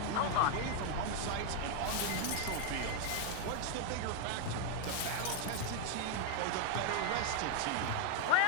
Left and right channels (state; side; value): different; both; correlation 0.01